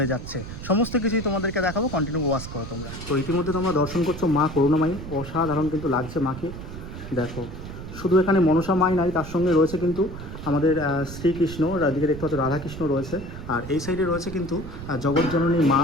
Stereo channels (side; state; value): right; noise; rumble, 10 dB below the sound